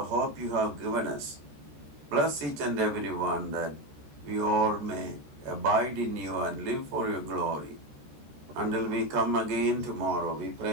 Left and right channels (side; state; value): left; late; 14 ms